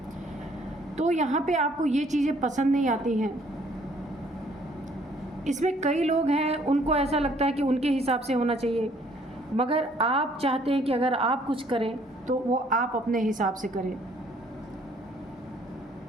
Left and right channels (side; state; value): both; normal; correlation 0.62